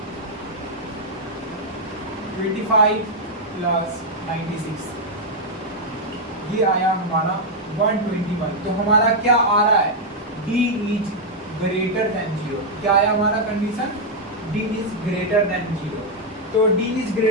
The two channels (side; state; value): both; normal; correlation -0.02